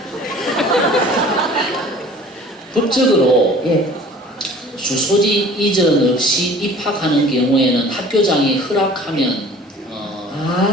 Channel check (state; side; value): normal; both; correlation 0.47